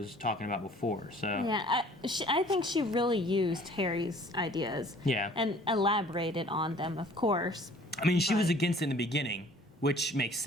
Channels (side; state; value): both; normal; correlation 0.53